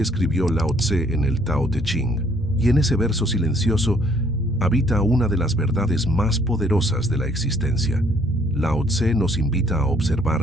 escribió Lao Tse en el Tao Te Ching, y en ese verso silencioso habita una de las verdades más poderosas de la existencia. Lao Tse nos invita a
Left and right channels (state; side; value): normal; both; correlation 0.64